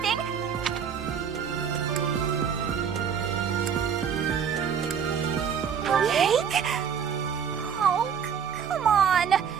Cake? Oh, come on.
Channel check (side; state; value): left; quieter; 7.4 dB